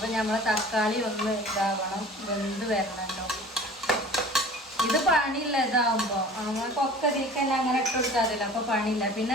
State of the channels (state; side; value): normal; both; correlation 0.43